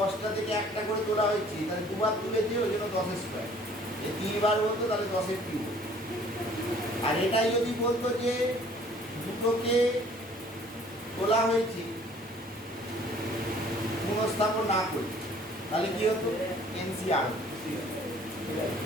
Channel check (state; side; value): normal; both; correlation 0.55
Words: থেকে একটা করে তোলা হয়েছে, তাহলে দুবার তুলেছে ওই জন্য 10 স্কোয়ার। এই 3বার বলতো তাহলে 10-এর কিউব। আর এটাই যদি বলতো যে দুটোকে তোলা হয়েছে পুনঃস্থাপন না করে, তাহলে কি হতো? এনসিআর।